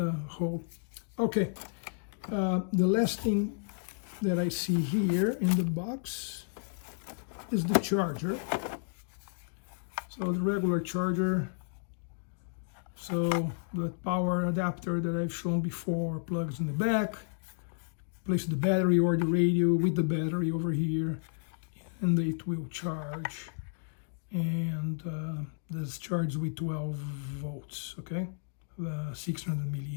Okay, the last thing that I see here in the box is the charger. So the regular charger. So the power adapter that I've shown before plugs in the back. Place the battery or the radio with the battery over here, and it will charge. and this charges with 12 volts, okay, 600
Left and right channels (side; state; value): right; silent; digital silence